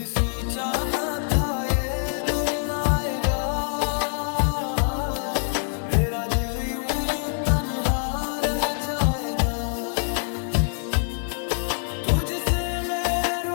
सोचा न था ये दिन आएगा, मेरा दिल यूं तन्हा रह जाएगा। तुझसे मैं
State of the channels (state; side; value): silent; right; 62 dB below the other